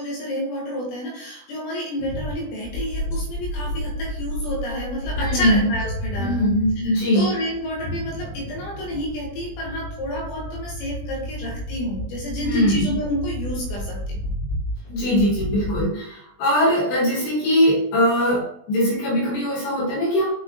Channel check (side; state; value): right; late; 20 ms